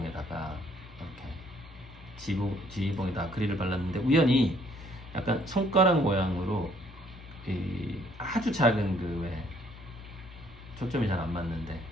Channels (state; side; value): normal; both; correlation 0.64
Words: 이렇게 지휘봉에다 아크릴을 발랐는데, 우연히 약간 손가락 모양으로 아주 작은 초점이 잘 안 맞는데